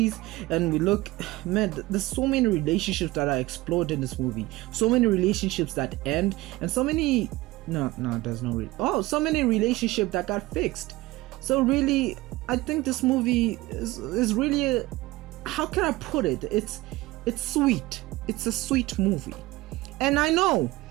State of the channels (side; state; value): left; quieter; 19.3 dB